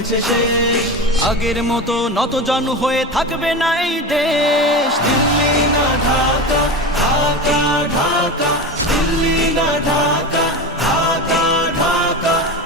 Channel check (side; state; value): both; normal; correlation 0.25